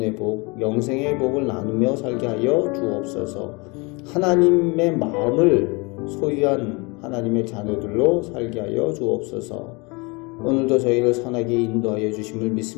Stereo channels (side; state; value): right; quieter; 28.2 dB